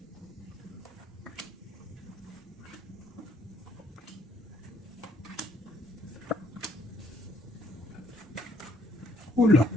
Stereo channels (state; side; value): normal; both; correlation 0.66